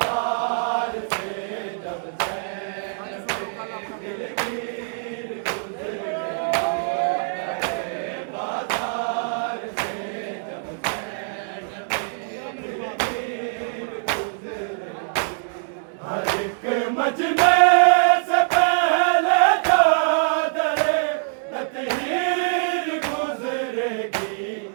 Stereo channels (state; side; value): silent; left; digital silence